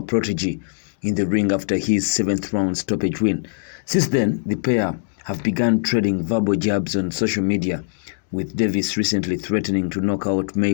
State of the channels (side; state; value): right; silent; digital silence